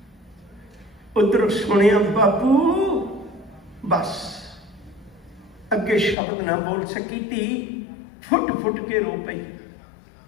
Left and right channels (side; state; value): right; drops out; at 6.2 s